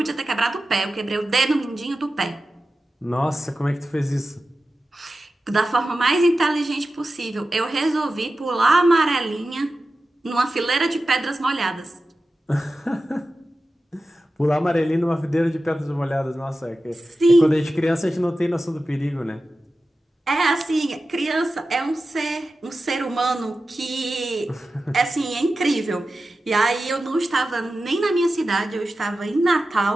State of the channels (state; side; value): normal; both; correlation 0.93